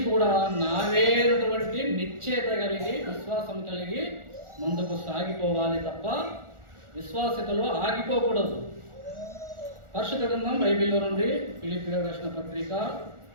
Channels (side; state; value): left; late; 1.4 ms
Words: కూడా నావేనటువంటి నిశ్చయత కలిగి విశ్వాసం కలిగి ముందుకు సాగిపోవాలి తప్ప విశ్వాసతలో ఆగిపోకూడదు. పరిశుద్ధ గ్రంథం బైబిల్లో నుండి ఫిలిప్పీయులకు రాసిన